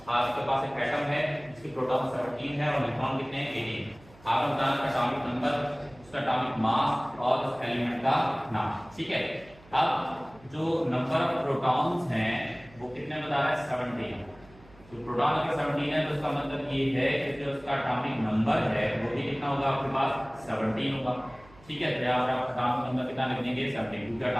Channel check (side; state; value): right; noise; hum, 24 dB below the sound